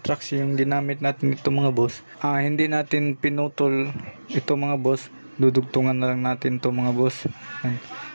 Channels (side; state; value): both; inverted; correlation -1.00